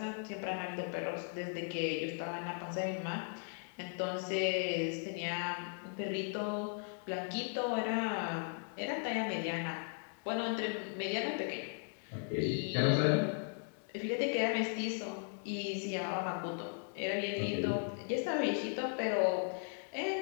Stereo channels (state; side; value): silent; right; 53 dB below the other